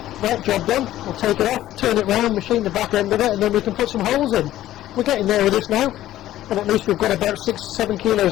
Right, job done. We'll take it off, turn it round, machine the back end of it, and then we can put some holes in. We're getting there with this now, and at least we've got about 6-7 kilos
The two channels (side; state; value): right; quieter; 13.9 dB